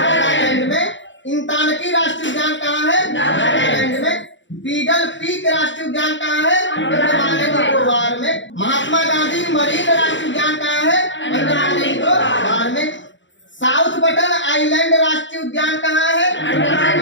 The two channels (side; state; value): right; late; 0.54 ms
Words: में। इंतानकी राष्ट्रीय उद्यान कहाँ है? नागालैंड में। बीडल पीक राष्ट्रीय उद्यान कहाँ है? अंडमान एंड निकोबार में। महात्मा गांधी मरीन राष्ट्रीय उद्यान कहाँ है? अंडमान एंड निकोबार में। साउथ बटन आइलैंड राष्ट्रीय उद्यान कहाँ है? अंडमान एंड